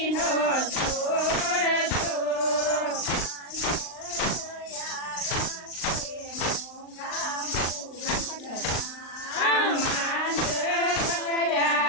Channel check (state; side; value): late; right; 39 ms